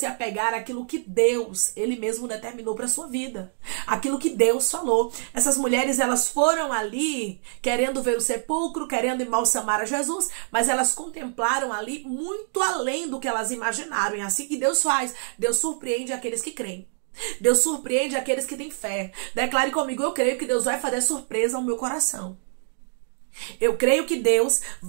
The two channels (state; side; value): silent; left; 62 dB below the other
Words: apegar àquilo que Deus, Ele mesmo determinou para a sua vida. Aquilo que Deus falou. Essas mulheres, elas foram ali querendo ver o sepulcro, querendo embalsamar a Jesus, mas elas contemplaram ali muito além do que elas imaginaram. E é assim que Deus faz. Deus surpreende aqueles que creem. Deus surpreende aqueles que têm fé. Declare comigo: eu creio que Deus vai fazer surpresa ao meu coração. Eu creio que Deus